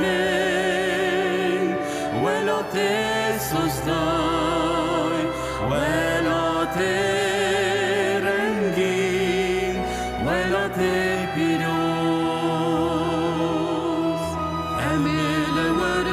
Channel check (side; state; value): both; identical; correlation 1.00